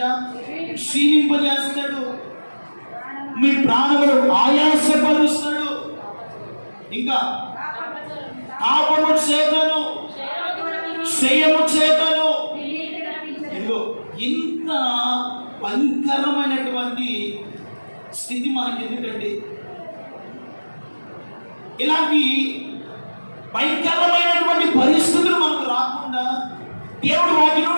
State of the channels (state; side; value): inverted; both; correlation -1.00